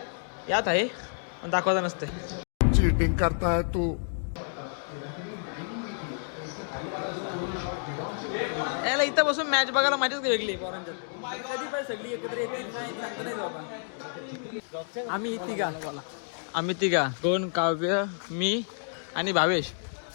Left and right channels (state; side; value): silent; right; digital silence